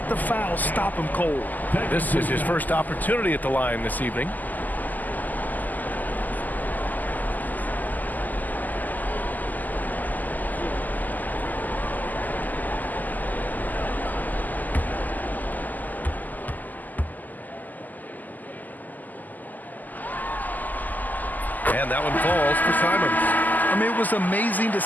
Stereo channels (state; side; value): late; right; 0.083 ms